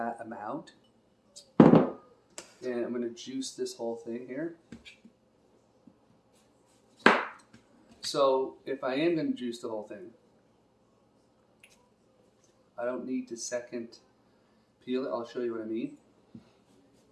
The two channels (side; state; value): both; identical; correlation 1.00